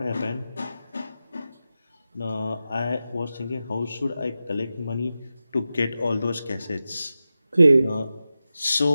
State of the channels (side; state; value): both; inverted; correlation -0.92